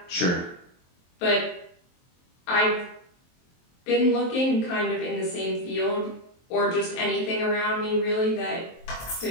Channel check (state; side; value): late; right; 23 ms